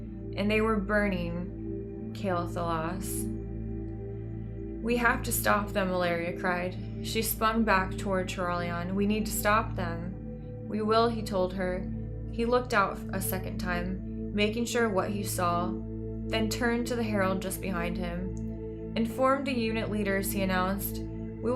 and they were burning aLilFoxz. "We have to stop them," Ilaria cried. She spun back toward Turalian. "We need to stop them." "We will," he told her. He looked out a second time, making sure what he saw, then turned to the herald just behind him. "Inform the unit leaders," he announced. "We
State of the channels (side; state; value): both; identical; correlation 1.00